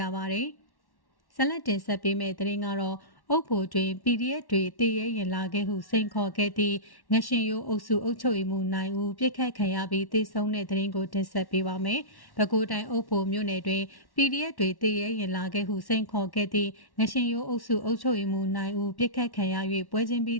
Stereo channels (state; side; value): late; right; 1.1 ms